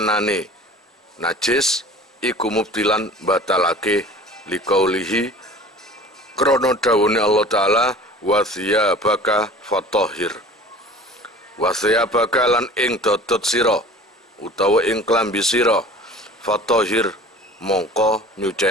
najis iku mubtilan batalake liqaulihi krana dawuhne Allah taala wa thiyabaka fatahhir. Wa thiyabaka lan ing dodot sira utawa ing klambi sira fatahhir mongko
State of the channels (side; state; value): both; normal; correlation 0.43